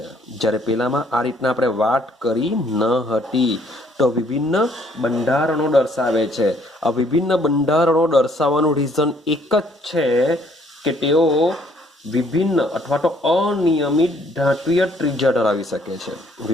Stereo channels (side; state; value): both; normal; correlation 0.64